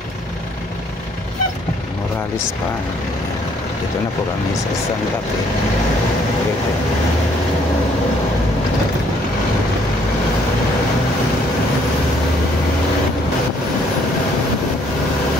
Morales pa. Dito na po kami sa Santa Fe.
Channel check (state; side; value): normal; both; correlation 0.65